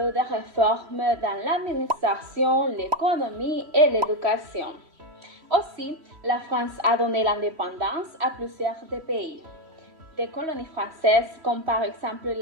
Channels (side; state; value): left; late; 3.1 ms